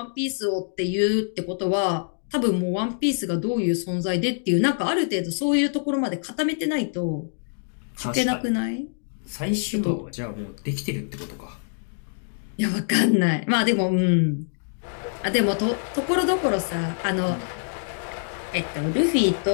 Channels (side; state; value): right; silent; digital silence